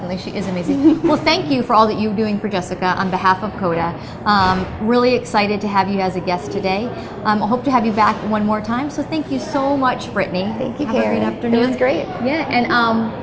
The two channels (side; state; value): both; identical; correlation 1.00